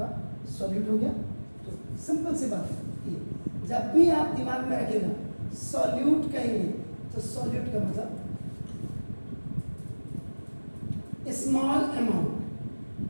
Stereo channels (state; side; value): inverted; both; correlation -1.00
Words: सॉल्यूट हो गया। तो सिंपल सी बात है, ये जब भी आप दिमाग में रखेगा सॉल्यूट कहेंगे तो सॉल्यूट का मतलब स्मॉल अमाउंट,